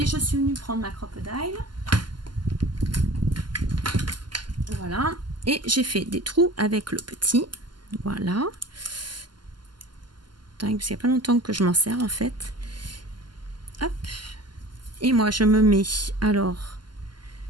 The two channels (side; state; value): left; late; 0.71 ms